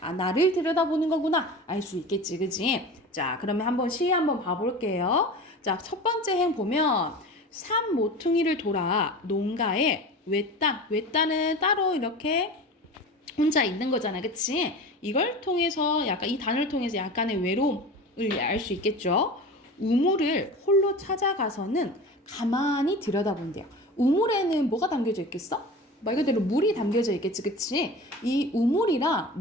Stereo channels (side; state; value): both; normal; correlation 0.33